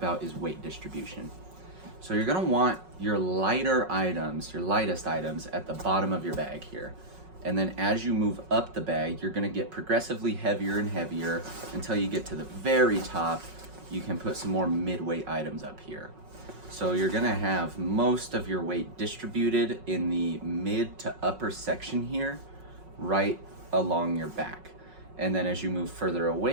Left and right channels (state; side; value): late; left; 5.4 ms